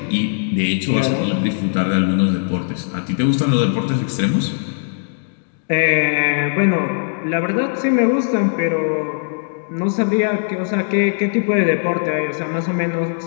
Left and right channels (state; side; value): silent; right; digital silence